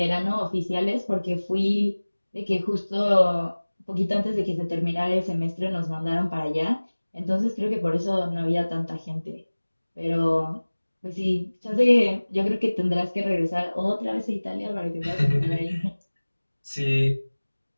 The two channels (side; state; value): both; inverted; correlation -1.00